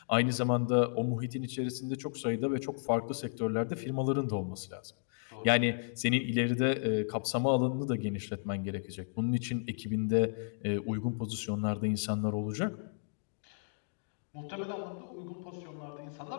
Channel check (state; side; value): silent; right; digital silence